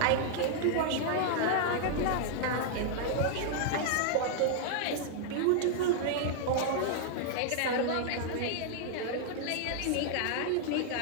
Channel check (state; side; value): different; both; correlation -0.01